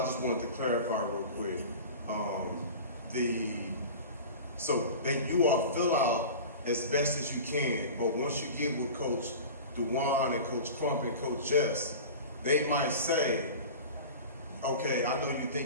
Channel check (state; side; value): inverted; both; correlation -0.35